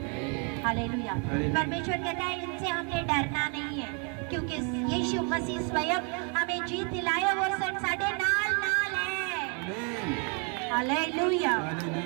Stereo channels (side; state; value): left; quieter; 37.0 dB